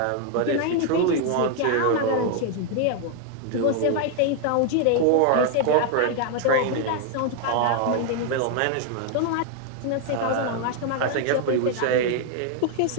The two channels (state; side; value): different; both; correlation 0.00